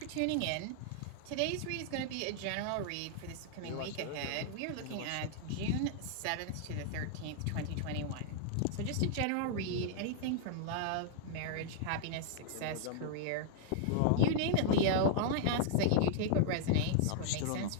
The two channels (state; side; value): different; both; correlation -0.01